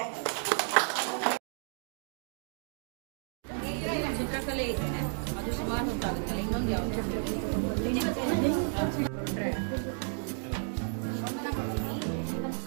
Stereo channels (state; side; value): silent; left; 56 dB below the other